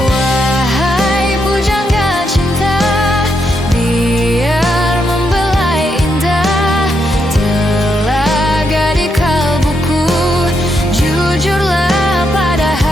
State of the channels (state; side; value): normal; both; correlation 0.80